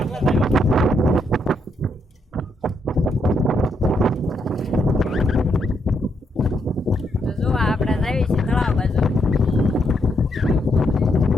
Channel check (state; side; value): normal; both; correlation 0.78